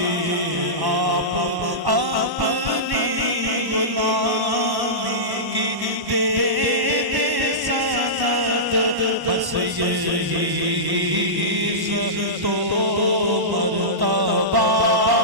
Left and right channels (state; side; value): late; left; 1.1 ms